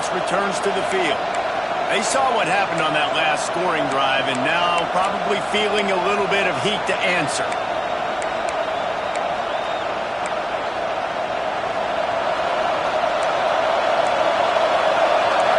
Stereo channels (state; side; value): identical; both; correlation 1.00